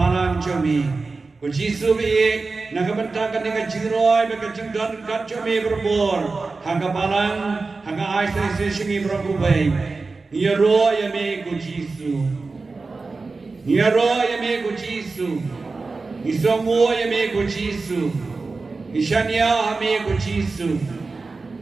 jumi Ku Jisu be Nagabantakan dengan jingroi, mereka jingdan kacau me berbor. Hanga balang, hanga aisai sesingi berakubai. Nia roh ya me ku Jisu. Nia roh ya me ku Jisu. Isongo ya me ku Jisu. Ishanya me ku Jisu.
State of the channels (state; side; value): quieter; left; 3.9 dB